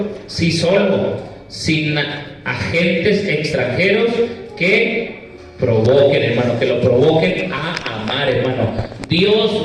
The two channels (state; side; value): identical; both; correlation 1.00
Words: sí solo, sin agentes extranjeros que provoquen, hermano, que lo provoquen a amar, hermano. Dios